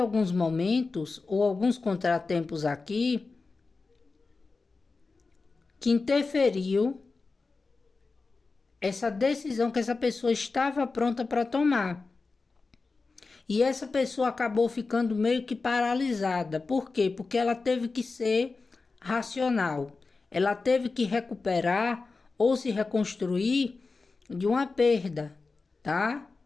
momentos ou alguns contratempos aqui que interferiu essa decisão que essa pessoa estava pronta para tomar. E essa pessoa acabou ficando meio que paralisada. Por quê? Porque ela teve que ser racional. Ela teve que recuperar ou se reconstruir de uma perda, tá?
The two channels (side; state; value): right; quieter; 4.0 dB